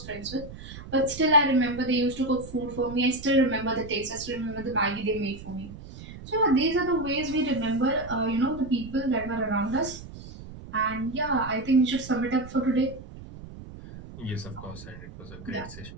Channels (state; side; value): noise; right; rumble, 14 dB below the sound